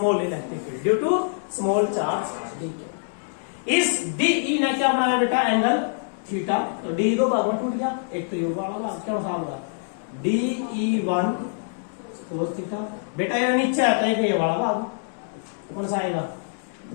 electric field due to small charge d. इस डीई ने क्या बनाया बेटा? Angle theta. तो डी दो भाग में टूट गया, एक तो ये वाला भाग क्या होगा? DE1 cos theta. बेटा ये नीचे आता है ये वाला भाग कौन सा आएगा?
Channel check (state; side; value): silent; right; 62 dB below the other